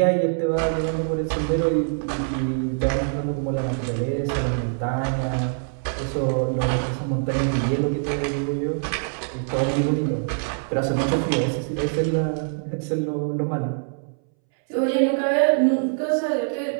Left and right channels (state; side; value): silent; left; 63 dB below the other